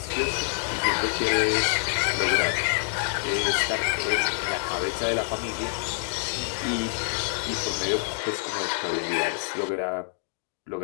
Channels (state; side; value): silent; right; digital silence